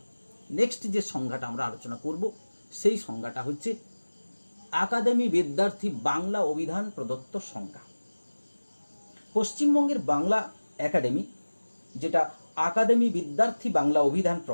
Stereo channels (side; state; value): both; inverted; correlation -1.00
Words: নেক্সট যে সংজ্ঞাটা আমরা আলোচনা করব সেই সংজ্ঞাটা হচ্ছে আকাদেমি বিদ্যার্থী বাংলা অভিধান প্রদত্ত সংজ্ঞা। পশ্চিমবঙ্গের বাংলা একাডেমি, যেটা আকাদেমি বিদ্যার্থী বাংলা অভিধান